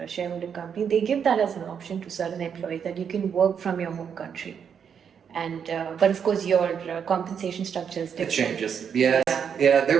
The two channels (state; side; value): quieter; left; 7.4 dB